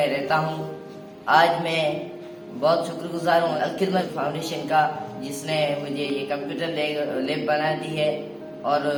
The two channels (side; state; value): both; identical; correlation 1.00